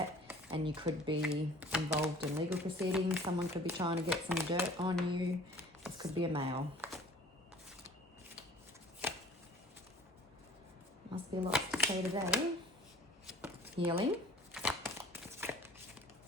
and you could be involved in legal proceedings. Someone could be trying to get some dirt on you. This could be a male. Must be lots to say today. Healing.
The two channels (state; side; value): normal; both; correlation 0.50